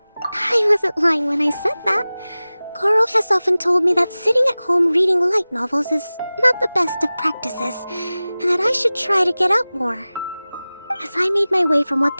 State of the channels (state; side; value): inverted; both; correlation -0.98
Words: I wasn't lying when I said that. Goro has often told me that sitting at home reading light novels is not the best of practices, and that I should try to get out more. As I made my way from